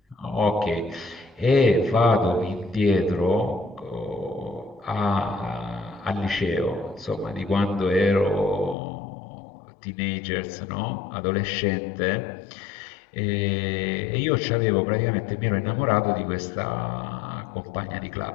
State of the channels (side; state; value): right; drops out; at 8.8 s